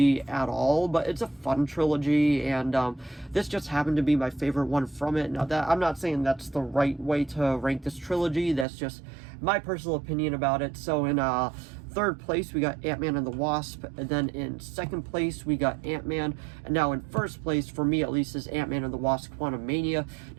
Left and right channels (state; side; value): drops out; left; at 8.7 s